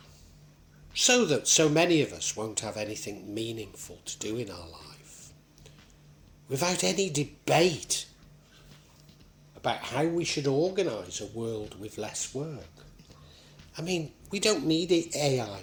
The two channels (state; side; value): identical; both; correlation 1.00